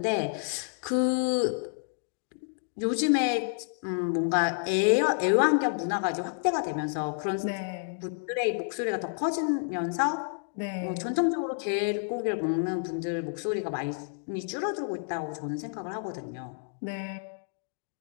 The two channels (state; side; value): silent; right; digital silence